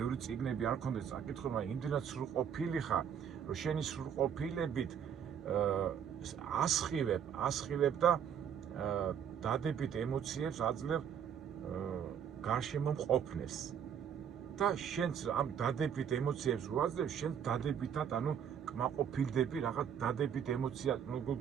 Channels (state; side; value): quieter; left; 8.3 dB